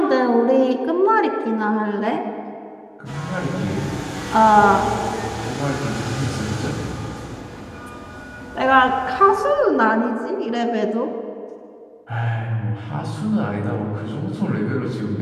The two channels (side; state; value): both; identical; correlation 1.00